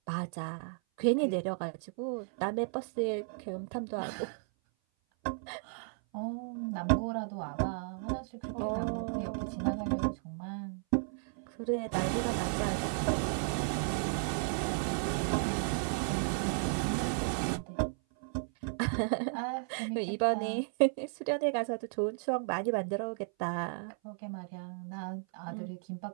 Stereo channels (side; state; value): left; silent; 55 dB below the other